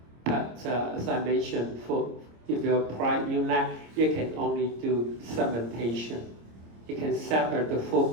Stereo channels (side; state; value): left; late; 26 ms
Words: But as I mentioned, if you apply UNet, you can only do segmentation. You can separate the